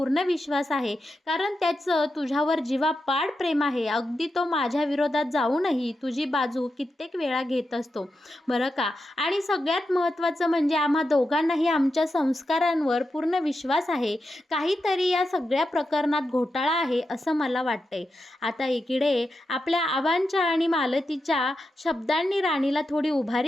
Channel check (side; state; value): both; normal; correlation 0.88